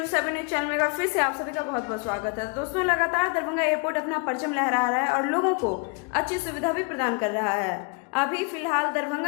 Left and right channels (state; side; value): quieter; right; 32.0 dB